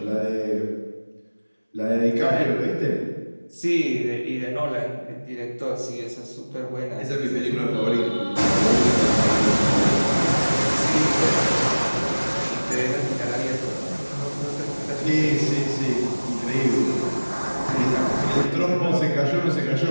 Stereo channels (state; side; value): inverted; both; correlation -1.00